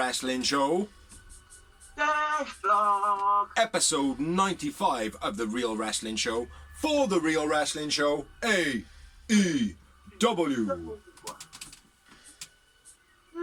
Show. Episode 95 of The Real Wrestling Show for The Real Wrestling Show AEW.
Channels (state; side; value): identical; both; correlation 1.00